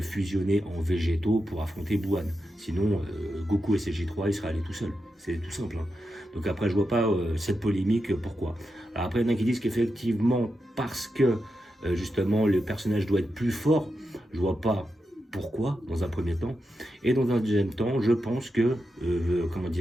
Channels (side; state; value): both; normal; correlation 0.88